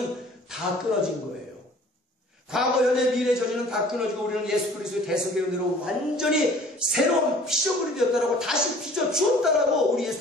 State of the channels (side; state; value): both; normal; correlation 0.51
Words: 다 끊어진 거예요. 과거, 현재, 미래의 저주는 다 끊어지고 우리는 예수 그리스도의 대속의 은혜로 완전히 새로운 피조물이 되었다라고 다시 빚어 주었다라고 우리